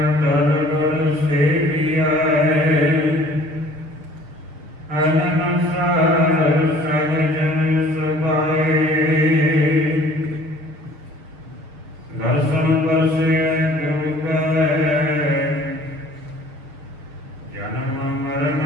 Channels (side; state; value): left; late; 6.8 ms